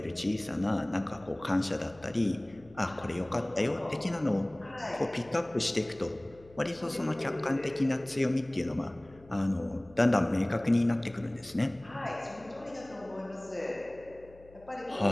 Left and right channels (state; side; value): noise; left; hum, 24 dB below the sound